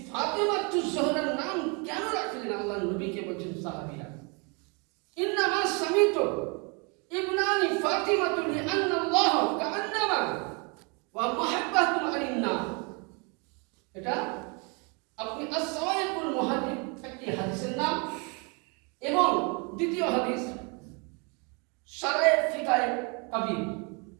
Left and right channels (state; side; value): quieter; left; 32.6 dB